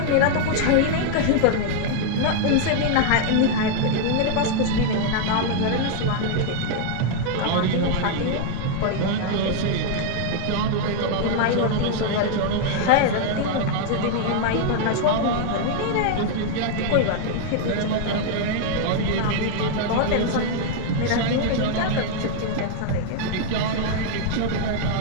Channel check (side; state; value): both; different; correlation 0.00